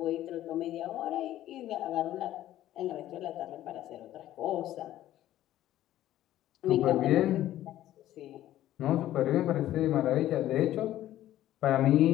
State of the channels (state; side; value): quieter; right; 13.5 dB